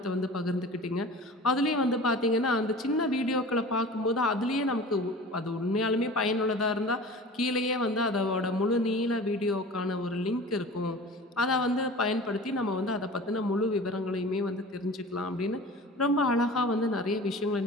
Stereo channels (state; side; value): normal; both; correlation 0.38